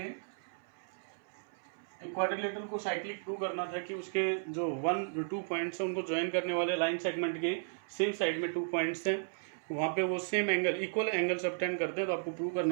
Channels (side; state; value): left; silent; 55 dB below the other